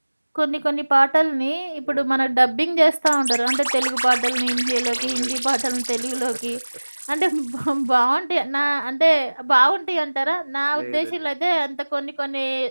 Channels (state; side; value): inverted; both; correlation -1.00